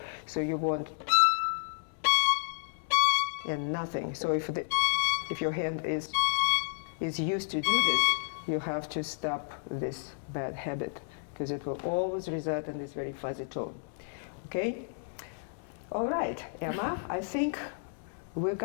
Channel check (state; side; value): silent; right; 57 dB below the other